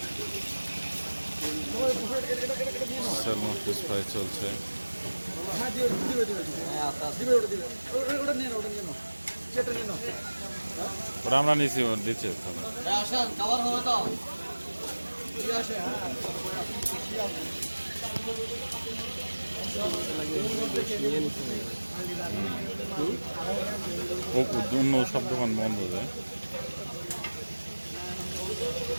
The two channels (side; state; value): both; inverted; correlation -1.00